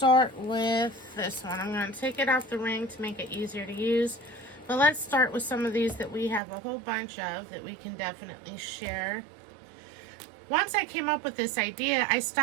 with this one. I'm going to take it off the ring to make it easier to use, but let's start with some of these that we have a whole bunch of that we can definitely share. Once I came up with this idea, I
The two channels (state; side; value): drops out; left; at 6.4 s